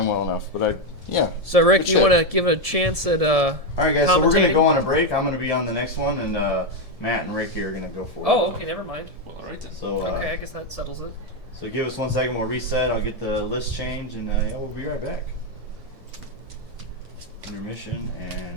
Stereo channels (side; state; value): left; late; 1.7 ms